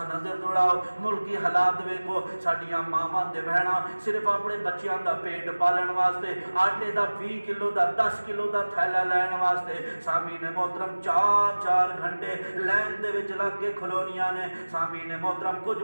نظر دوڑاؤ، ملکی حالات ویکھو، ساڈیاں ماواں تے بہناں صرف اپنے بچیاں دا پیٹ پالن واسطے آٹے دا 20 کلو دا 10 کلو دا تھیلا لین واسطے سامعین محترم 4 گھنٹے لائن دے وچ لگ کے کھلونیاں نے۔ سامعین محترم، کچھ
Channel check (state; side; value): inverted; both; correlation -1.00